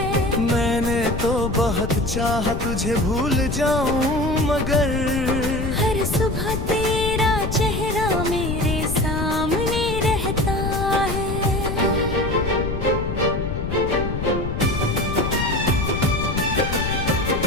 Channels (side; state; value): left; noise; rumble, 3 dB below the sound